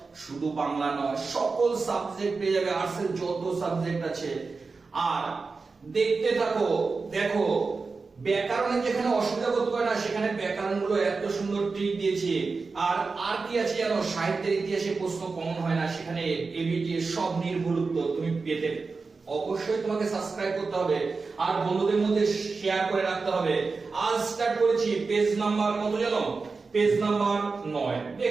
শুধু বাংলা নয়, সকল সাবজেক্ট পেয়ে যাবে, আর্টসের যত সাবজেক্ট আছে। আর দেখতে থাকো, দেখো ব্যাকরণে যেখানে অসুবিধা বোধ করে না, সেখানে ব্যাকরণ গুলো এত সুন্দর ট্রিক দিয়েছে। আর কি আছে জানো, সাহিত্যের ইতিহাসে প্রশ্ন কমন হয় না, সেখানে এবিটি সব নির্ভুল উত্তর তুমি পেতে। অবশ্যই তোমাকে সাবস্ক্রাইব করতে হবে আর বন্ধুদের মধ্যে শেয়ার করে রাখতে হবে। আজ স্টার্ট করেছি পেজ নাম্বার কত জানো? Page number 9।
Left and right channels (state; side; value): quieter; left; 4.3 dB